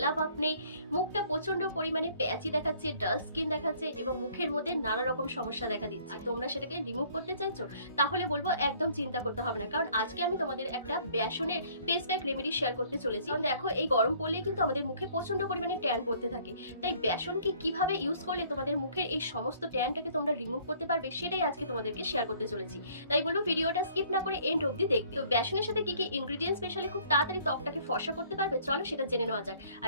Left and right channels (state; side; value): inverted; both; correlation -0.58